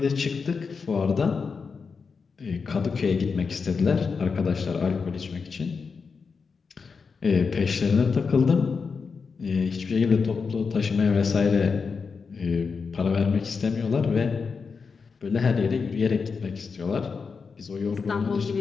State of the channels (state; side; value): quieter; right; 5.2 dB